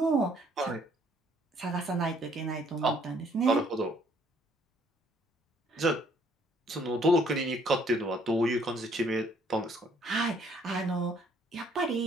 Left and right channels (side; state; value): both; normal; correlation 0.63